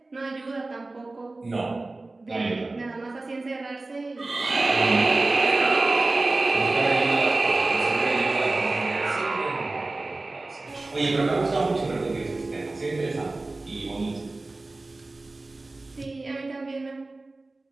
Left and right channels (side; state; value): left; quieter; 3.1 dB